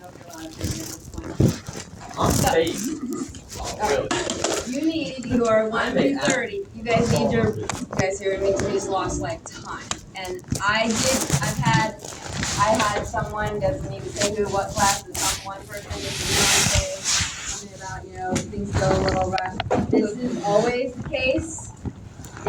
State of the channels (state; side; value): identical; both; correlation 1.00